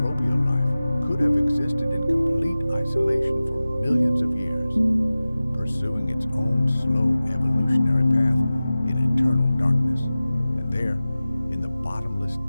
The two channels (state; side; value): inverted; both; correlation -0.96